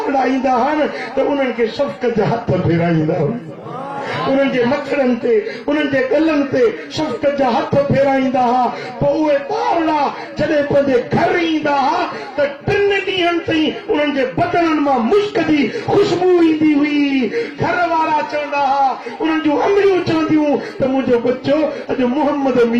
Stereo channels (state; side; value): identical; both; correlation 1.00